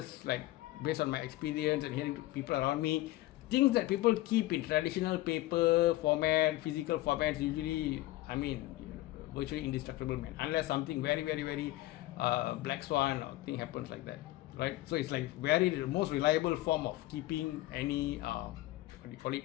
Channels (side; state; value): right; quieter; 17.2 dB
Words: like based on my experience and hearing people around me, things that people keep in traditional paper format, physical formats, usually, I mean, virtually indestructible, man, unless something very, very, very black swan or thing happens like that, right? So it's like very the most reliable form of keeping any what do you call it,